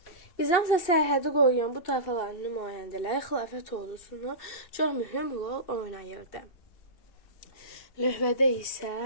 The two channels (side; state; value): right; late; 2.6 ms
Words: Bizansa sərhədi qoruyan bu tayfaların nümayəndələri xilafət ordusunu çox mühüm rol oynayırdı. Lövhədə isə